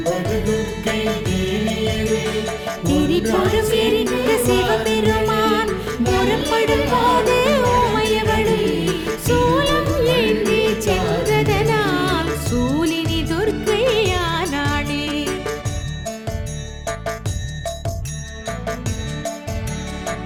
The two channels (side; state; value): both; identical; correlation 1.00